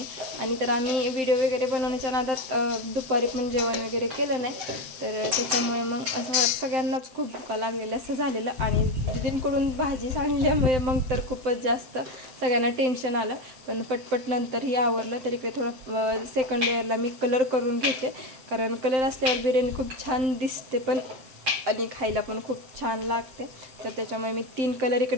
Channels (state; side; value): late; left; 7.7 ms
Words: आणि तर आम्ही व्हिडिओ वगैरे बनवण्याच्या नादात दुपारी पण जेवण वगैरे केलं नाही, तर त्याच्यामुळे मग असं सगळ्यांनाच खूप भुका लागलेलं असं झालेलं. आणि दीदींकडून भाजी सांडल्यामुळे मग तर खूपच जास्त सगळ्यांना टेन्शन आलं, पण पटपट नंतरही आवरलं. तर इकडे थोडं सेकंड लेअरला मी कलर करून घेते, कारण कलर असल्यावर बिर्याणी खूप छान दिसते पण आणि खायला पण खूप छान लागते. तर त्याच्यामुळे मी 3 कलर